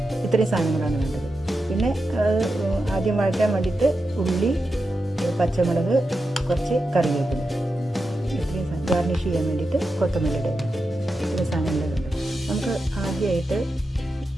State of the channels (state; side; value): normal; both; correlation 0.89